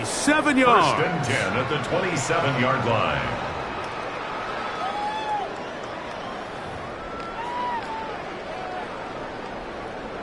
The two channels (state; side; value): identical; both; correlation 1.00